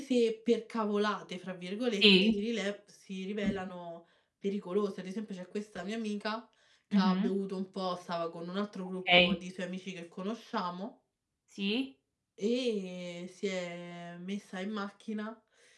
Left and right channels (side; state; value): both; identical; correlation 1.00